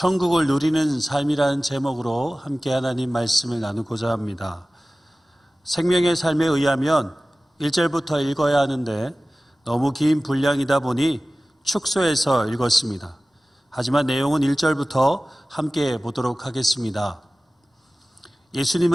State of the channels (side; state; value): both; normal; correlation 0.97